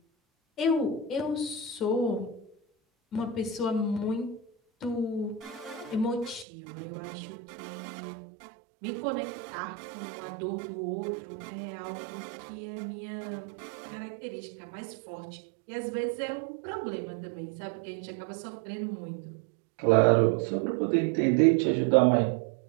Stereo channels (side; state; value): left; drops out; at 6.5 s